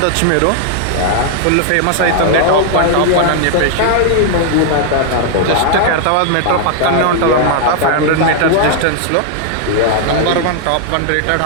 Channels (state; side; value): different; both; correlation 0.00